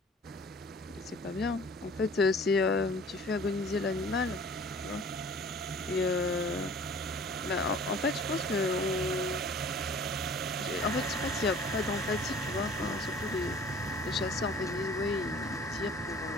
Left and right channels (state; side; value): normal; both; correlation 0.48